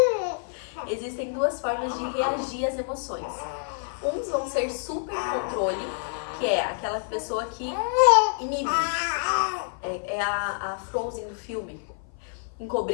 Existem duas formas de reagir às emoções. Uns vão ser supercontrole, que é aquela pessoa que inibe. É a Frozen do filme.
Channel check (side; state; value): right; silent; 55 dB below the other